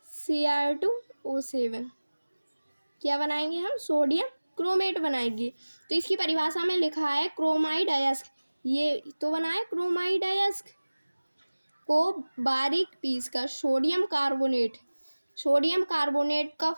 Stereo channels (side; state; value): both; inverted; correlation -1.00